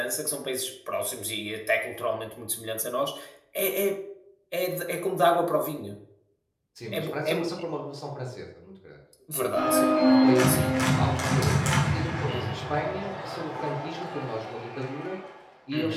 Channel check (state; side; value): identical; both; correlation 1.00